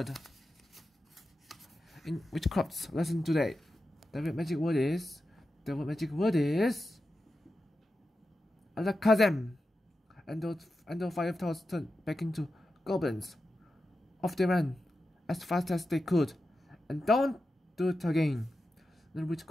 In witchcraft's lesson today, the real magic word is Alakazam. And those 5 toads turned back into goblins. Off they ran as fast as they could, and don't do it again. Little Witch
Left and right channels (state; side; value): normal; both; correlation 0.91